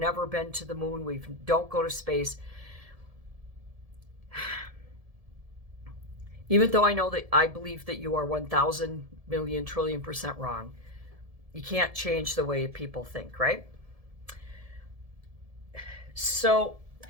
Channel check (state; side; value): late; left; 1.7 ms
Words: been to the moon, we don't go to space. Even though I believe that you are 1,000 million trillion % wrong, you can't change the way people think, right? So